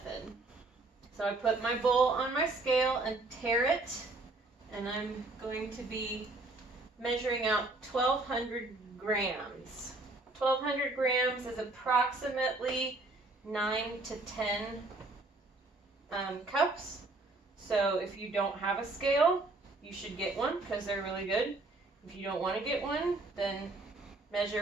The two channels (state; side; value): quieter; left; 3.1 dB